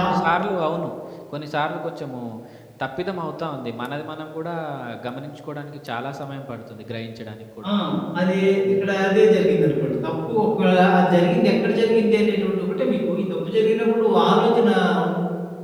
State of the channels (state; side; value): identical; both; correlation 1.00